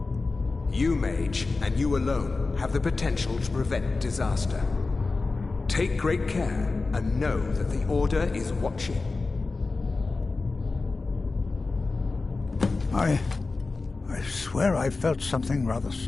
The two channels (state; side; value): quieter; right; 3.8 dB